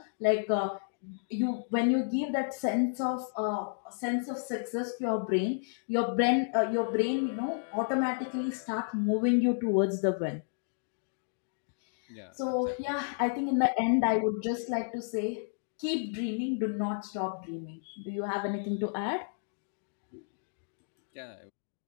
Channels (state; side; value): silent; right; digital silence